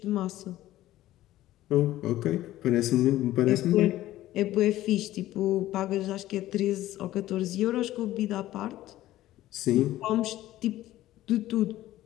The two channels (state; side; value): quieter; right; 14.9 dB